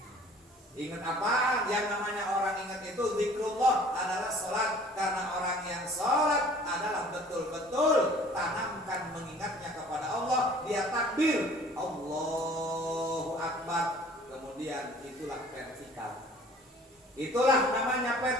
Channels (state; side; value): normal; both; correlation 0.51